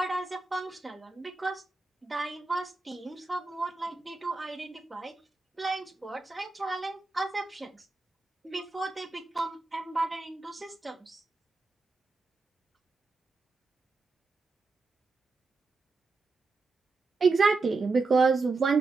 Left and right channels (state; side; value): quieter; left; 3.7 dB